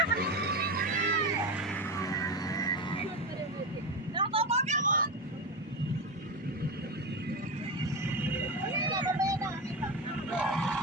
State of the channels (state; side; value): normal; both; correlation 0.17